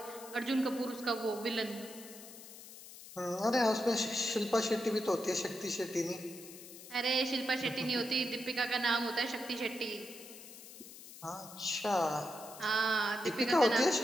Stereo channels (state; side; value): noise; left; hiss, 16 dB below the sound